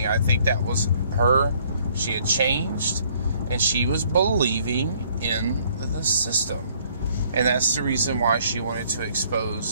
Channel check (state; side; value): inverted; both; correlation -0.63